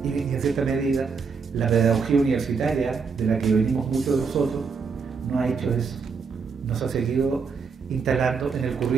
Y en cierta medida, la pedagogía universitaria, de la que venimos muchos de nosotros, no ha hecho eso. Nos ha seguido instalando en el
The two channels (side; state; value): left; quieter; 5.3 dB